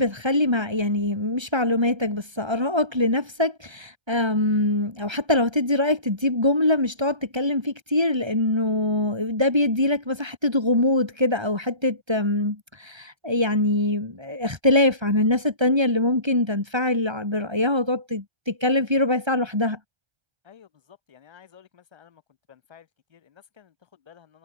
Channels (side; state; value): left; late; 1.3 ms